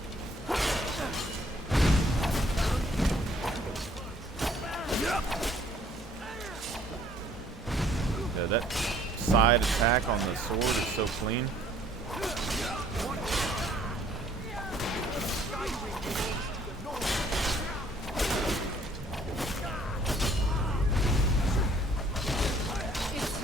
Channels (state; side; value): normal; both; correlation 0.60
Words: Yeah, that side attack on the sword is so clean.